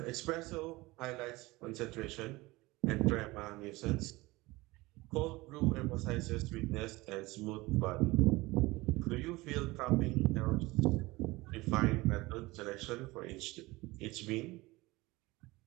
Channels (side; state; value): left; quieter; 21.1 dB